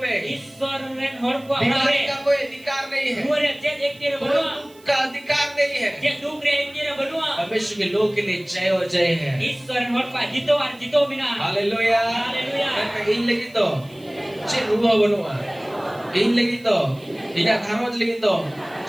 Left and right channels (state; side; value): noise; right; hiss, 27 dB below the sound